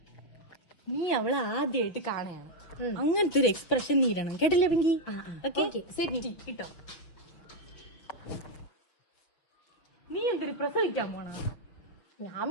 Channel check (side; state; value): right; late; 5.7 ms